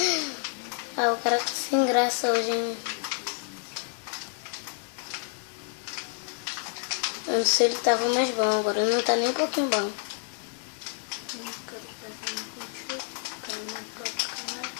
Ah, o cara tá sem graça hoje, hein? Eu não sei se ele tava mais bom, agora não tá nem um pouquinho bom. O cara tá fazendo contigo. O cara não toca, né?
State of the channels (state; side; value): silent; right; 59 dB below the other